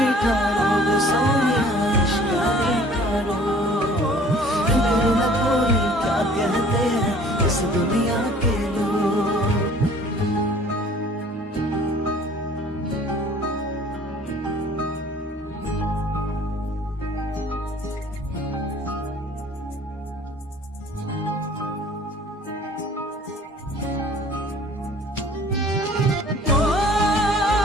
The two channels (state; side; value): normal; both; correlation 0.51